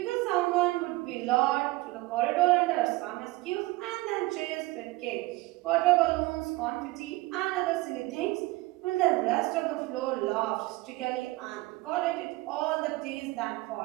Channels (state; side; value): quieter; left; 20.8 dB